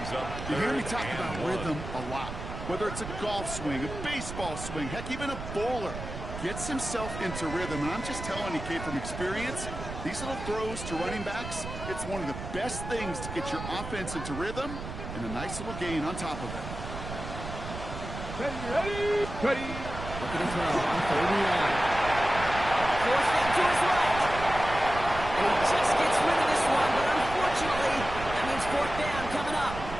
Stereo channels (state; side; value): noise; right; rumble, 9 dB below the sound